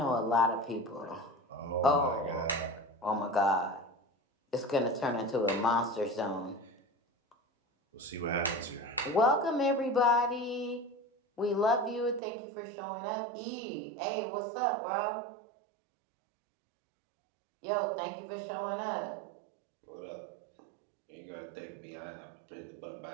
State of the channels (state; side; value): drops out; left; at 12.2 s